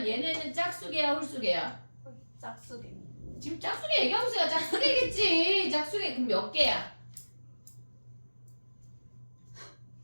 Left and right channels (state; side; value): inverted; both; correlation -1.00